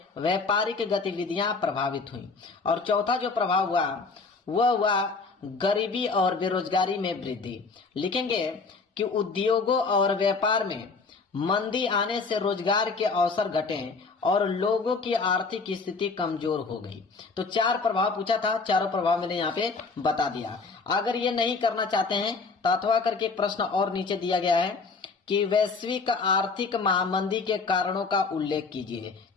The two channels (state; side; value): quieter; right; 4.3 dB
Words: व्यापारिक गतिविधियां प्रभावित हुई। और चौथा जो प्रभाव हुआ वह हुआ गरीबी और बेरोजगारी में वृद्धि। लिखेंगे कि उद्योगों और व्यापार में मंदी आने से रोजगार के अवसर घटे और लोगों की आर्थिक स्थिति कमजोर हो गई। तो 4 प्रभाव पूछा था, चारों प्रभाव मैंने यहाँ पे बता दिया। अगर ये नहीं करना चाहते हैं तो अथवा करके एक प्रश्न और नीचे दिया गया है कि वैश्विक आर्थिक महामंदी के कारणों का उल्लेख कीजिए।